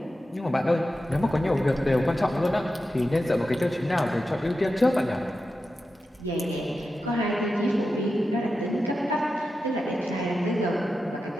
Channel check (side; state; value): both; normal; correlation 0.90